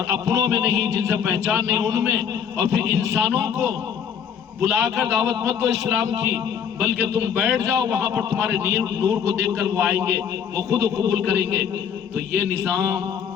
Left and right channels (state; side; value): quieter; right; 7.8 dB